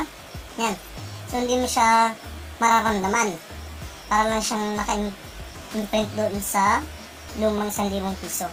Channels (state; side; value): identical; both; correlation 1.00